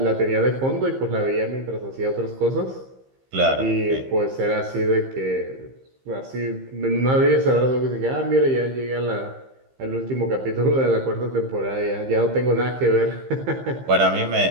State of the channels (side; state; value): left; late; 15 ms